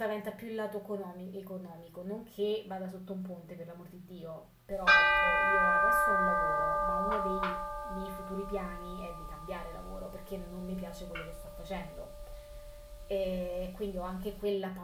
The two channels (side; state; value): both; identical; correlation 1.00